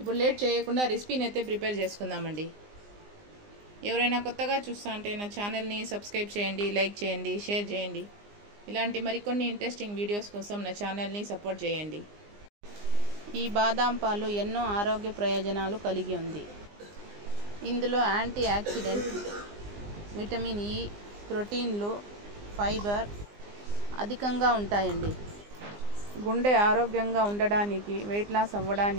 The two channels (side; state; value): left; late; 20 ms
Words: లేట్ చేయకుండా రెసిపీని అయితే ప్రిపేర్ చేసుకుందామండి. ఎవరైనా కొత్తగా చూస్తా అంటే నా ఛానల్ని సబ్స్క్రైబ్ చేయండి, లైక్ చేయండి, షేర్ చేయండి. ఇలాంటి మరికొన్ని ఇంట్రెస్టింగ్ వీడియోస్ కోసం నా ఛానల్ని సపోర్ట్ చేయండి. ఈ బాదాం పాలు ఎన్నో ఆరోగ్య ప్రయోజనాలు కలిగి ఉంది. ఇందులో యాంటీ ఆక్సిడెంట్, విటమిన్ ఇ, ప్రోటీన్లు, ఫైబర్ అధికంగా ఉంటాయండి. గుండె ఆరోగ్యంగా ఉండడానికి, వెయిట్ లాస్